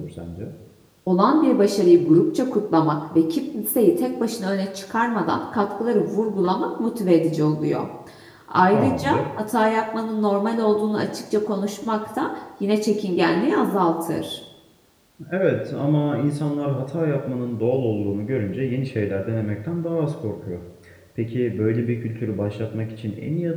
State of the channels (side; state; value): both; identical; correlation 1.00